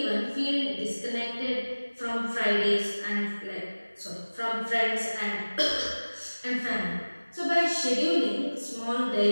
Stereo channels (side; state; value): both; inverted; correlation -1.00